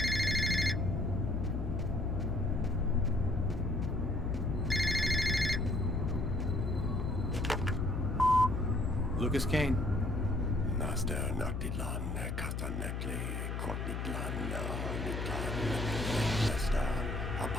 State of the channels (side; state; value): left; noise; hum, 3 dB below the sound